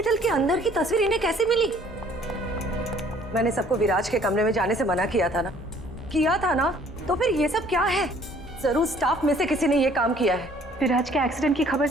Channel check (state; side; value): normal; both; correlation 0.57